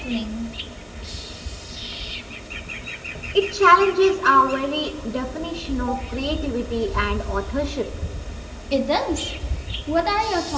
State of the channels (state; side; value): identical; both; correlation 1.00